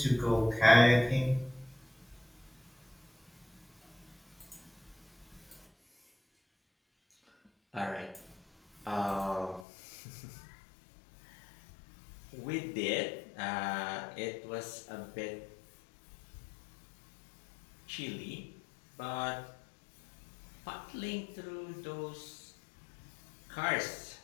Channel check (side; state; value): right; drops out; at 9.7 s